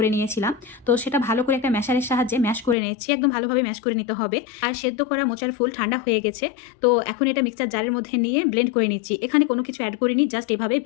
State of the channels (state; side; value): drops out; right; at 2.8 s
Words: নিয়েছিলাম। তো সেটা ভালো করে একটা ম্যাশারের সাহায্যে ম্যাশ করে নিয়েছি, একদম ভালোভাবে ম্যাশ করে নিতে হবে। আর সেদ্ধ করা মোচার ফুল ঠান্ডা হয়ে গেছে। তো এখন এটা মিক্সার জারের মধ্যে নিয়ে ব্লেন্ড করে নিচ্ছি। এখানে কোনো কিছু অ্যাড করিনি, জাস্ট এভাবে